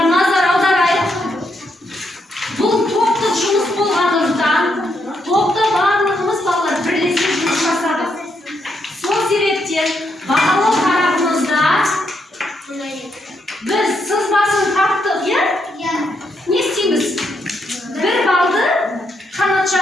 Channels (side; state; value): both; normal; correlation 0.78